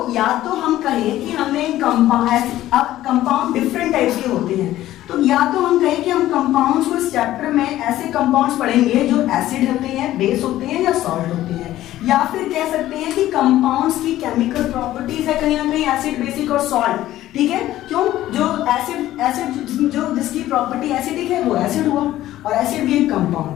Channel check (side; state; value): right; quieter; 14.3 dB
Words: या तो हम कहें कि हमने कंपाउंड डिफरेंट टाइप्स के होते हैं, तो या तो हम कहें कि हम कंपाउंड्स को इस चैप्टर में ऐसे कंपाउंड्स पढ़ेंगे जो एसिड होते हैं, बेस होते हैं या सॉल्ट होते हैं, या फिर कह सकते हैं कि कंपाउंड्स की केमिकल प्रॉपर्टीज है कहीं ना कहीं एसिड, बेसिक और सॉल्ट। ठीक है, क्यों, जो एसिड जो जिसकी प्रॉपर्टी एसिडिक है वो एसिड हुआ, और एसिड भी एक